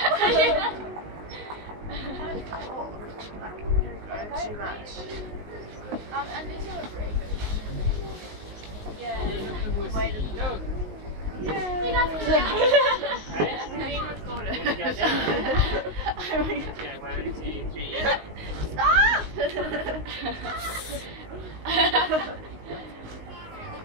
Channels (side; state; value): left; late; 19 ms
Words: Too much. And these are breakers. Yeah, wait a minute. Yeah. You guys can go. Being recorded. Okay, 1, 2, 3. Stop!